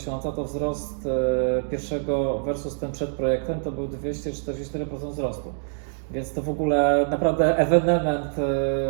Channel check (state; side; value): silent; left; digital silence